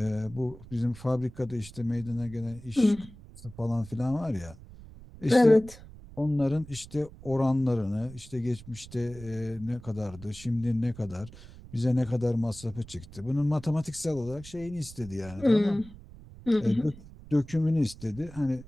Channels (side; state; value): right; noise; rumble, 18 dB below the sound